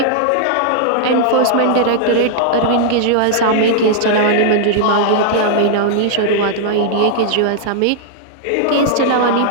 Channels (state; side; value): different; both; correlation -0.01